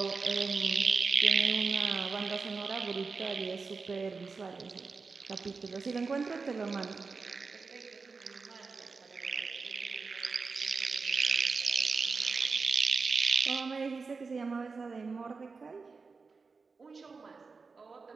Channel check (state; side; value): quieter; left; 4.5 dB